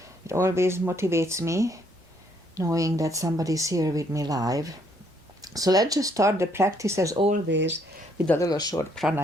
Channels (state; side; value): normal; both; correlation 0.69